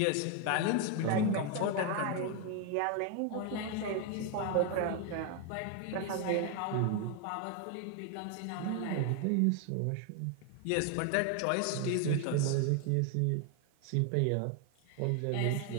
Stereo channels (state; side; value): different; both; correlation 0.01